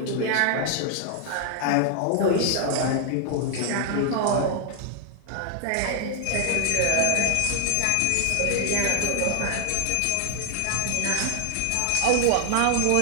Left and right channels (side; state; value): both; different; correlation 0.00